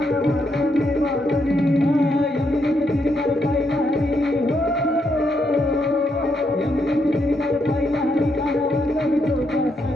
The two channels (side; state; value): both; normal; correlation 0.78